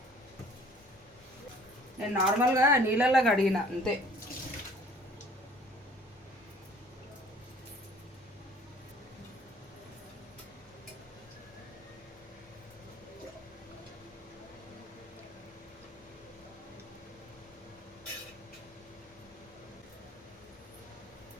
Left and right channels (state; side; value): normal; both; correlation 0.53